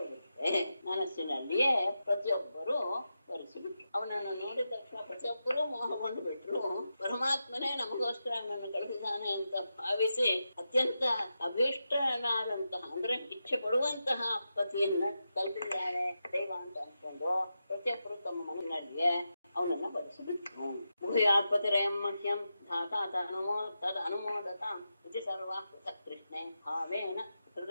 ಮನಸ್ಸಿನಲ್ಲಿಯೇ ಪ್ರತಿಯೊಬ್ಬರು ವರಿಸಿಬಿಟ್ರು. ಅವನನ್ನು ನೋಡಿದ ತಕ್ಷಣ ಪ್ರತಿಯೊಬ್ಬರೂ ಮೋಹಗೊಂಡು ಬಿಟ್ರು. ಪರಮಾತ್ಮನೇ ನಮಗೋಸ್ಕರ ಅವನನ್ನು ಕಳಿಸಿದ್ದಾನೆ ಅಂತ ಭಾವಿಸಿ ಅತ್ಯಂತ ಅಭೀಷ್ಟನಾದಂತಹ ಅಂದ್ರೆ ಇಚ್ಛೆ ಪಡುವಂತಹ ಪತಿಯನ್ನ ಕಲ್ಪಿಸಿದ್ದಾರೆ ದೈವ ಅಂತ ಅನ್ಕೊಂಡು ಪ್ರತಿಯೊಬ್ಬರು ತಮ್ಮ ಮನಸ್ಸಿನಲ್ಲಿಯೇ ಅವನನ್ನ ವರಿಸಿಬಿಟ್ರು. ಭೂಯಾತ್ಪತಿರಯಂ ಮಹ್ಯಂ ಧಾತಾ ತದ್ ಅನುಮೋದತಾಂ ಇತಿ ಸರ್ವಾ ಪೃಥಕ್ ಕೃಷ್ಣೆ ಭಾವೇನ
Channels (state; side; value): inverted; both; correlation -0.88